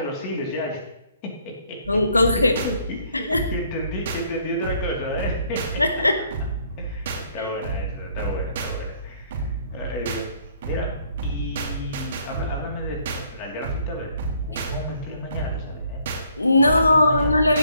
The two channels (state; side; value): inverted; both; correlation -0.65